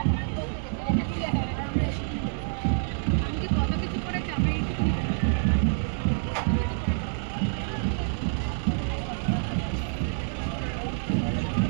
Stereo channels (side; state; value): left; silent; digital silence